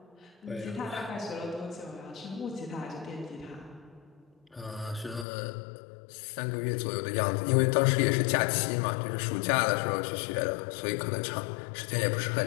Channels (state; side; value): drops out; right; at 5.2 s